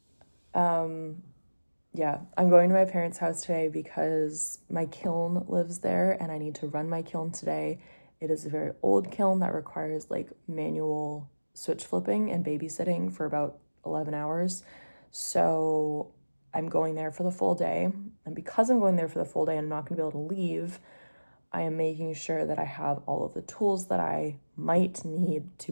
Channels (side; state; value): both; inverted; correlation -1.00